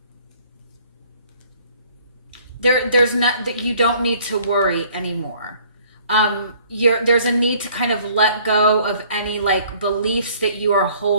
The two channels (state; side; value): inverted; both; correlation -0.57